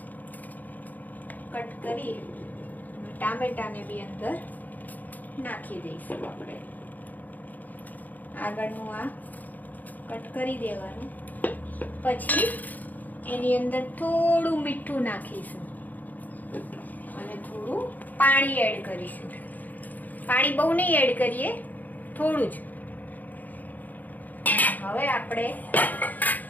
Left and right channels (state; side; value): late; right; 0.082 ms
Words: કટ કરી ટામેટાને બી અંદર નાખી દઈશું આપણે. આગળનું આ કટ કરી દેવાનું. પછી એની અંદર થોડું મીઠું નાખીશું અને થોડું પાણી એડ કરીશું. પાણી બહુ નહીં એડ કરીએ, થોડું જ. હવે આપણે